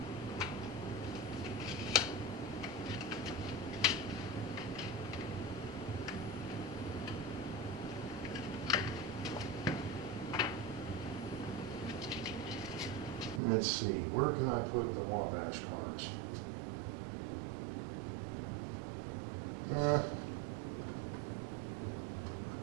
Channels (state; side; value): drops out; left; at 13.4 s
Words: Let's see, where can I put the Wabash cars? I